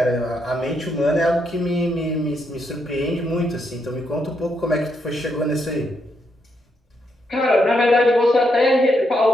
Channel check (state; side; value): normal; both; correlation 0.79